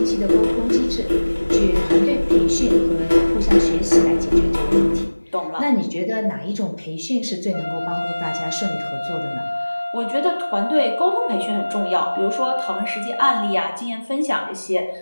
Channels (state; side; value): inverted; both; correlation -1.00